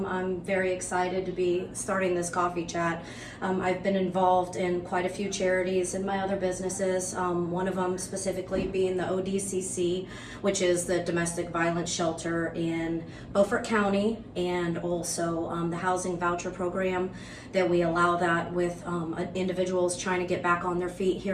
very excited to be starting this Coffee Chat. I've been involved in quite a few charities in my other businesses, one of them specifically being the ODCC, which is the domestic violence shelter in Beaufort County, and also the housing voucher program that we allow that with individuals trying to get back on their feet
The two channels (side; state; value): both; identical; correlation 1.00